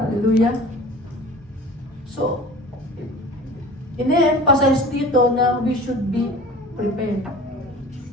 So, ine-emphasize dito na we should be prepared.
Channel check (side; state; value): both; normal; correlation 0.40